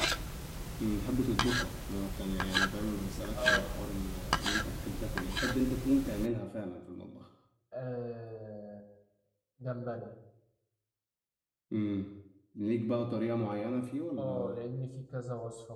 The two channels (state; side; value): identical; both; correlation 1.00